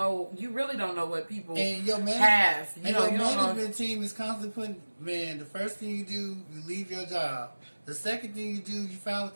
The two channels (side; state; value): both; inverted; correlation -1.00